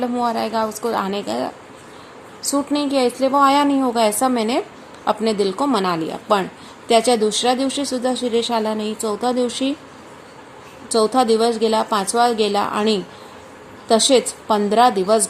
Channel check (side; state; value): both; identical; correlation 1.00